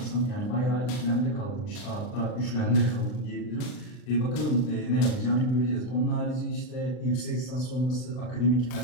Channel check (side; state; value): right; late; 40 ms